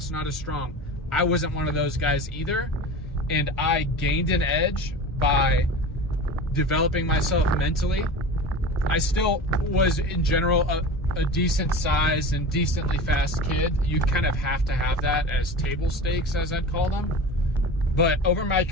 not as strong, I wasn't one of those guys either. And I gained an edge by developing myself mentally. I still was, in general, a decent sized and decently fast kid. You kind of have to have that as table stakes, as I'd call them. But over my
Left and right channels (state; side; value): normal; both; correlation 0.32